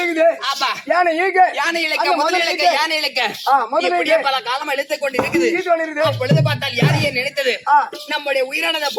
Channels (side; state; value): both; identical; correlation 1.00